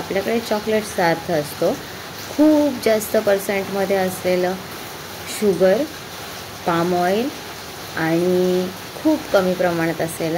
चॉकलेट्सचा अर्थ असतो खूप जास्त पर्सेंटमध्ये असलेलं शुगर, पाम ऑइल आणि खूप कमी प्रमाणात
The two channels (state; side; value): identical; both; correlation 1.00